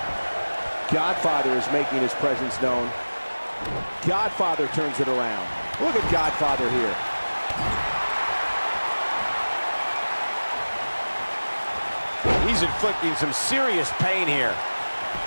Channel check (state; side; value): inverted; both; correlation -1.00